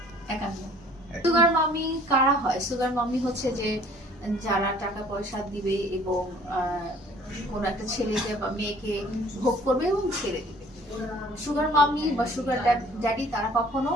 51। সুগার মামি কারা হয়? সুগার মামি হচ্ছে যে যারা টাকা পয়সা দিবে এবং কোন একটা ছেলেকে বা মেয়েকে ভোগ করবে এবং ছেড়ে দিবে। সুগার মামি বা সুগার ড্যাডি তারা কখনো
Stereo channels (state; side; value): normal; both; correlation 0.54